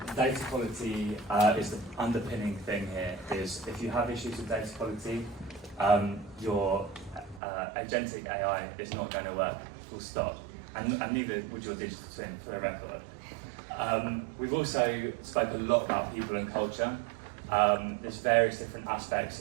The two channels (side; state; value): left; drops out; at 7.4 s